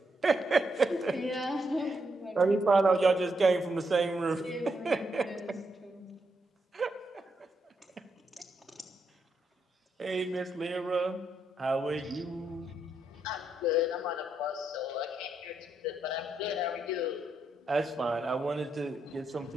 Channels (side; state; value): both; normal; correlation 0.80